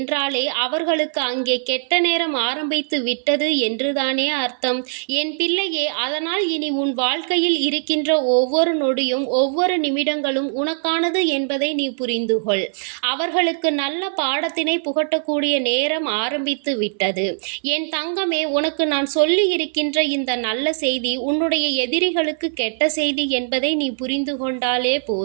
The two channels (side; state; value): left; silent; 65 dB below the other